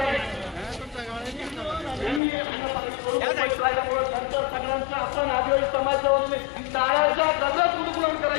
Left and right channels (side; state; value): right; drops out; at 2.2 s